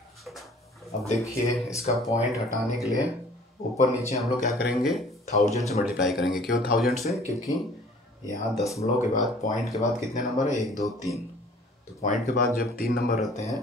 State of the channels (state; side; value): normal; both; correlation 0.52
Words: अब देखिए इसका पॉइंट हटाने के लिए ऊपर नीचे हम लोग क्या करेंगे 1000 से मल्टीप्लाई करेंगे। क्यों 1000 से? क्योंकि यहाँ दशमलव के बाद पॉइंट के बाद कितने नंबर है 1 2 3। तो पॉइंट के बाद जब 3 नंबर रहते हैं